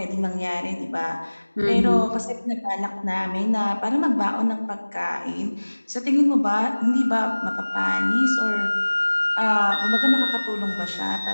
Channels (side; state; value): both; inverted; correlation -1.00